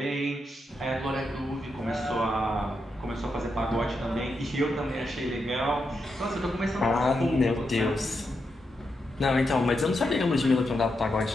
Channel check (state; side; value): normal; both; correlation 0.85